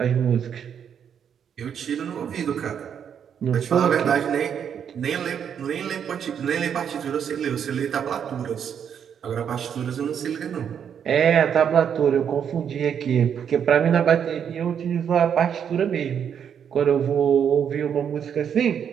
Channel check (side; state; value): left; quieter; 8.1 dB